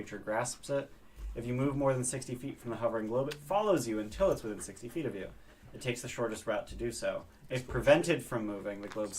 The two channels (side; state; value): both; identical; correlation 1.00